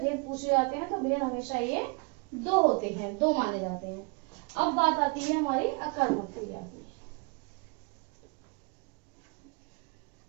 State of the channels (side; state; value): left; quieter; 31.4 dB